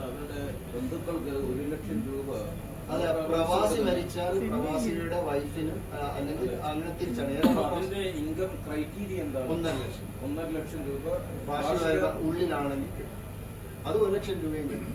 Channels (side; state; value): both; identical; correlation 1.00